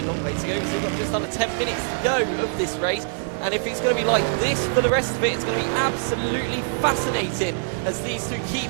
long way to go. So just under 10 minutes to go of this race. And if it's going to be like this for the rest of it, it's going to be absolutely fascinating as these two keep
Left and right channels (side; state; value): left; silent; 55 dB below the other